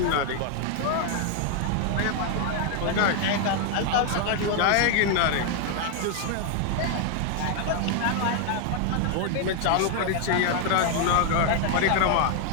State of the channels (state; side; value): different; both; correlation 0.00